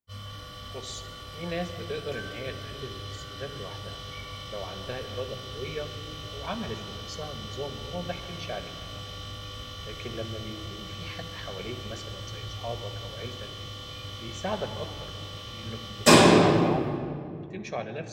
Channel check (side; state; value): both; identical; correlation 1.00